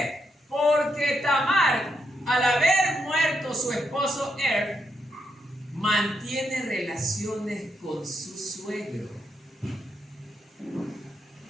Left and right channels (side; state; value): both; normal; correlation 0.81